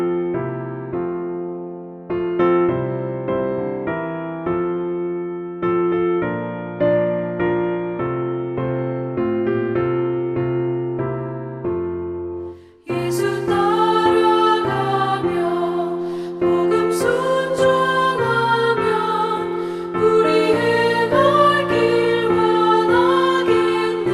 예수 따라가며 복음 순종하며 우리 행할 길 원하겠네.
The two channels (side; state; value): both; identical; correlation 1.00